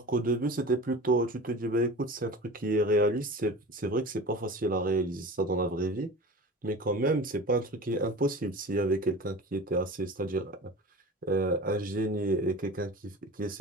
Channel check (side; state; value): both; normal; correlation 0.35